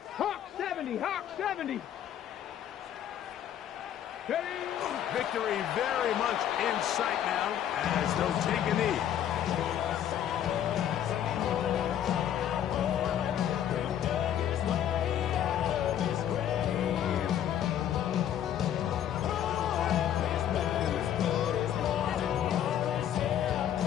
Hawk 70, Hawk 70. Victory very much in sight now as they'll take a knee.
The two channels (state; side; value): quieter; right; 10.3 dB